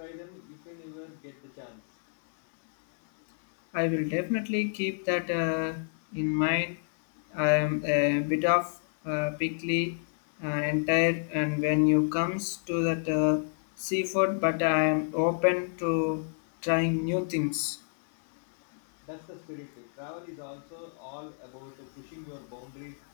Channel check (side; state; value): right; silent; 58 dB below the other